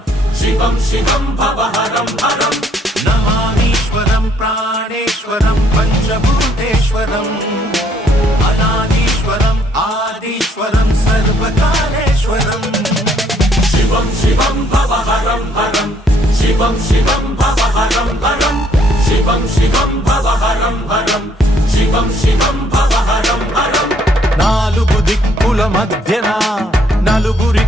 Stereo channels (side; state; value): both; normal; correlation 0.67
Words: శివం శివం భవహరం హరం. నమామీశ్వరం ప్రాణేశ్వరం పంచభూతేశ్వరం అనాదీశ్వరం ఆదీశ్వరం సర్వకాలేశ్వరం. శివం శివం భవహరం హరం శివం శివం భవహరం హరం శివం శివం భవహరం హరం శివం శివం భవహరం హరం. నాలుగు దిక్కుల మధ్యన నలుగురి